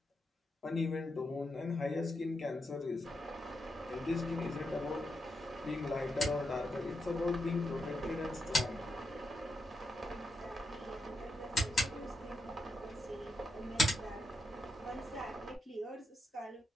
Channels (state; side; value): normal; both; correlation 0.84